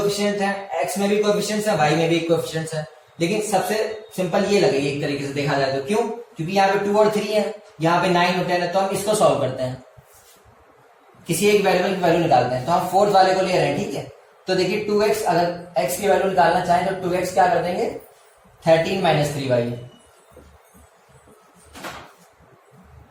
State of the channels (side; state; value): both; identical; correlation 1.00